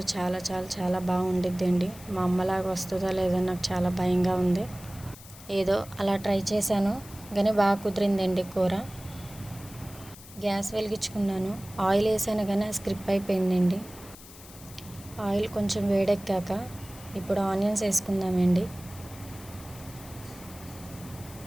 చాలా చాలా చాలా బాగా వండిద్దండి. మా అమ్మలాగా వస్తుందో లేదో నాకు చాలా భయంగా ఉంది. ఏదో అలా ట్రై చేశాను, కానీ బాగా కుదిరిందండి కూర. గ్యాస్ వెలిగించుకున్నాను, ఆయిల్ వేసాను కానీ స్క్రిప్ అయిపోయిందండి. ఆయిల్ కొంచెం వేడెక్కాక ఇప్పుడు ఆనియన్స్ వేసుకుందామండి.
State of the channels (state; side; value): noise; left; hiss, 18 dB below the sound